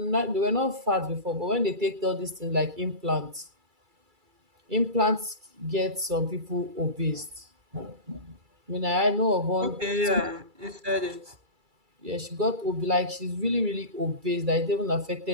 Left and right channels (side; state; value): left; late; 2.3 ms